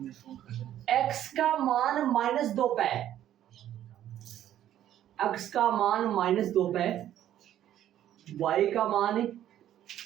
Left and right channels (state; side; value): quieter; left; 11.7 dB